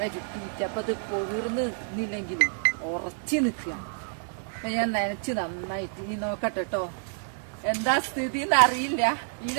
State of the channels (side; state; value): left; silent; digital silence